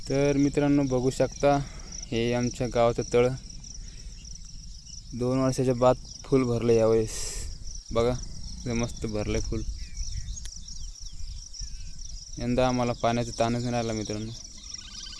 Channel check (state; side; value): identical; both; correlation 1.00